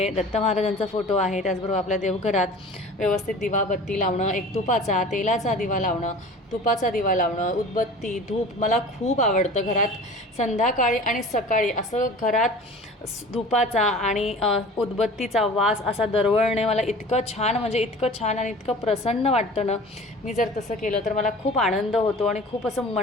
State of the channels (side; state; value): both; normal; correlation 0.41